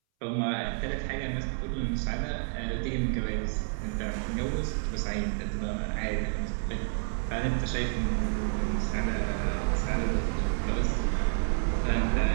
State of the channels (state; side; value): silent; left; 58 dB below the other